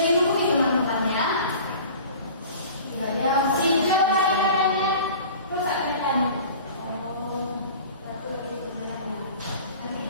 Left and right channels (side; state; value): both; inverted; correlation -0.42